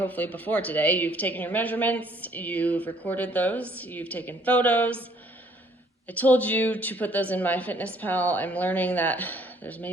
before today, you've taken your measurements, you've recorded those, you've taken photos. I told you to put those in MyFitnessPal. I'm learning that there's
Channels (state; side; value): normal; both; correlation 0.62